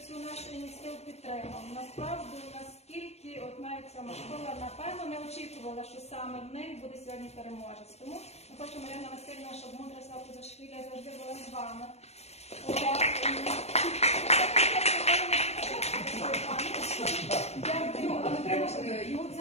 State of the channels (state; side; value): late; right; 0.31 ms